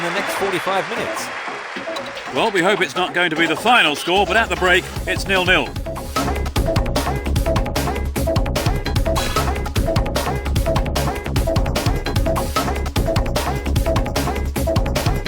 the next 45 minutes. Well, we hope it's not going to be the final score, but at the break, it's 0-0.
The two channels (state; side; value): identical; both; correlation 1.00